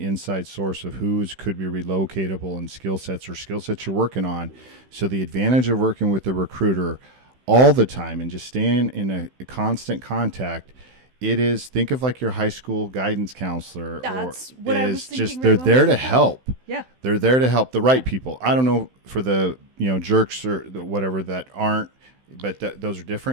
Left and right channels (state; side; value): late; left; 16 ms